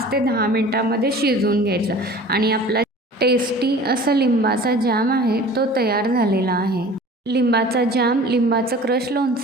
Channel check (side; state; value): both; normal; correlation 0.43